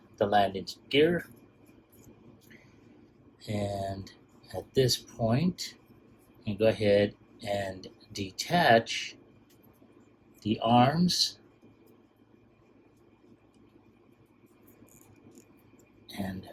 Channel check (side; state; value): both; identical; correlation 1.00